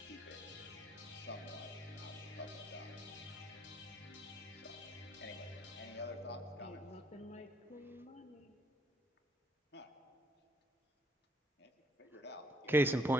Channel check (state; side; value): normal; both; correlation 0.67